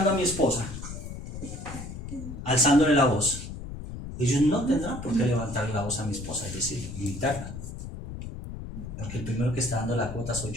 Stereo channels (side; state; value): left; noise; rumble, 9 dB below the sound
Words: a mi esposa, alzándole la voz, ellos no tendrán por qué levantarle la voz a mi esposa, es decir, gritarla. Porque el primero que está dando la cuota soy